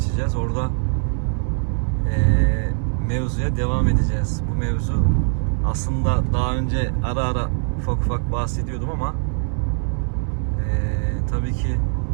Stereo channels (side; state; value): left; silent; digital silence